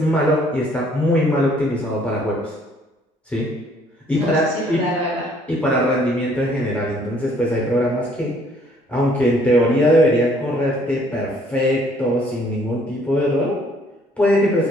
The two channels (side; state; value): both; normal; correlation 0.62